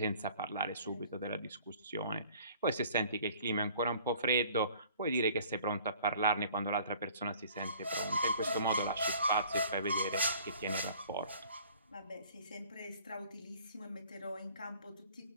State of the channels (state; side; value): inverted; both; correlation -0.53